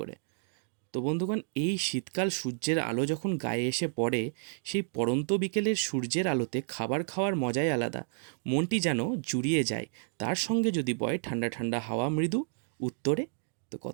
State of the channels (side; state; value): left; silent; digital silence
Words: করে। তো বন্ধুগণ, এই শীতকাল সূর্যের আলো যখন গায়ে এসে পড়ে, সেই পড়ন্ত বিকেলের সূর্যের আলোতে খাবার খাওয়ার মজাই আলাদা। মনটি যেন জুড়িয়ে যায়। তার সঙ্গে যদি বয় ঠান্ডা ঠান্ডা হাওয়া মৃদু উত্তরে, তো